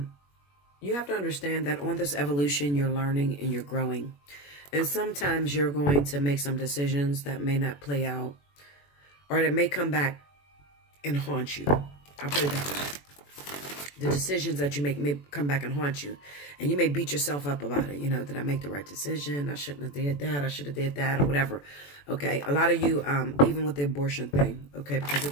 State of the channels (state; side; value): late; right; 21 ms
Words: You have to understand that on this evolution, you're learning and you're growing. And sometimes you're going to make some decisions that may not play out, or that may come back and haunt you. I'll put it that way. The decisions that you make may come back and haunt you. And you may beat yourself up about it. You know, did I make the right decision? I shouldn't have did that. I should have did that, or whatever. Okay, a lot of you, even with the abortion thing, okay, because